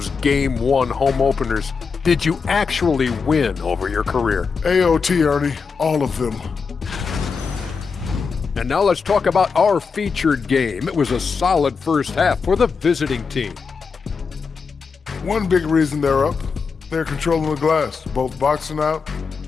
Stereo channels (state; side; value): quieter; right; 5.3 dB